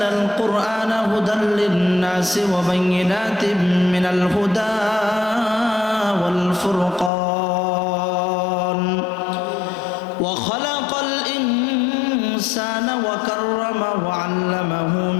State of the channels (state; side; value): drops out; right; at 7.1 s